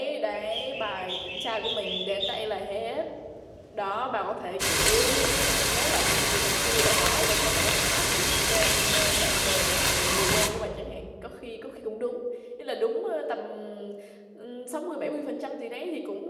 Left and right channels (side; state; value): both; identical; correlation 1.00